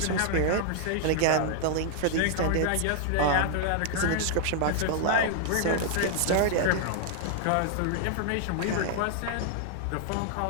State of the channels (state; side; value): different; both; correlation -0.01